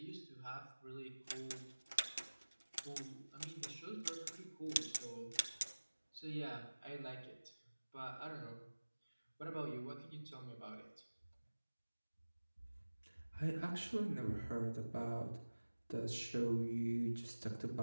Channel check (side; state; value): both; inverted; correlation -1.00